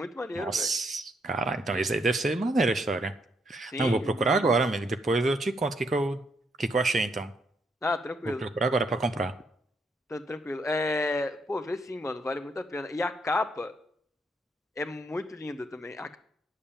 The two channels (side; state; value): both; normal; correlation 0.75